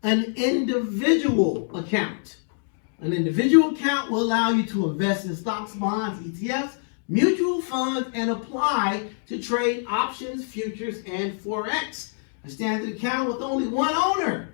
an individual account. An individual account will allow you to invest in stocks, bonds, ETFs, mutual funds, and apply to trade options, futures, and Forex. A standard account with only one owner.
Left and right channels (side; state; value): right; silent; digital silence